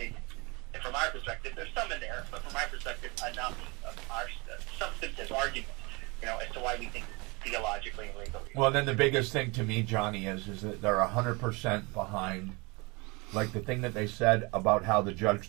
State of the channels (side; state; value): left; quieter; 27.2 dB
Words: and from our perspective, there's some in there, but from our perspective, enough of our substantive argument, as to why we think theologically and legally. Well, then the biggest thing to me, Johnny, is that they're 100% behind, like the thing that they said about how the judge